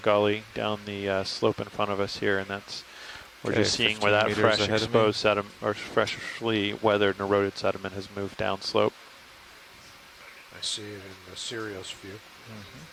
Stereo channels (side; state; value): both; identical; correlation 1.00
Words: down the slope in front of us here, and we're just seeing where that fresh exposed sediment or freshly weathered and eroded sediment has moved down slope. I see it in the Sirius view.